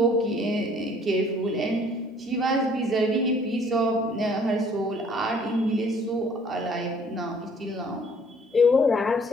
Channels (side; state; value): both; normal; correlation 0.58